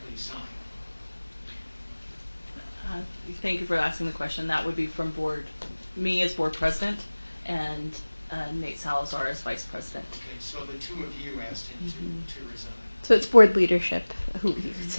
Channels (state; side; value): inverted; both; correlation -1.00